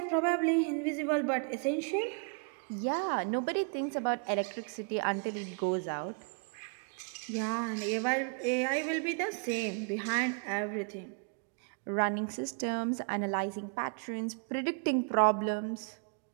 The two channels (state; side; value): quieter; left; 39.0 dB